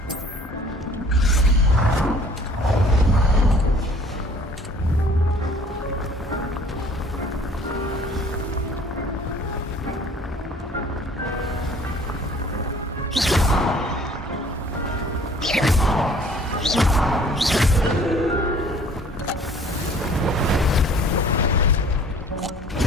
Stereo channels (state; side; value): normal; both; correlation 0.53